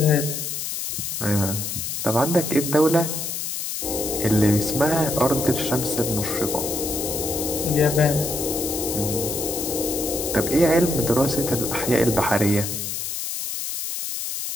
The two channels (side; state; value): left; noise; hiss, 4 dB below the sound